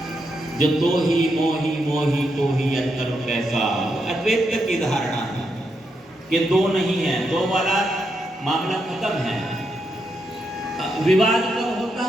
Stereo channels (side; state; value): both; normal; correlation 0.82